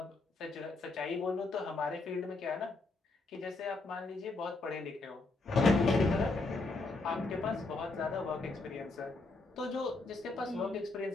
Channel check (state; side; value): quieter; right; 3.3 dB